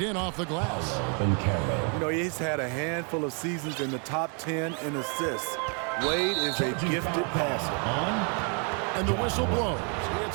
off the glass. You know, he's had a handful of seasons in the top 10 in assists. Wade is a gifted passer. And the whistle blows.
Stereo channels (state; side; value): quieter; left; 38.4 dB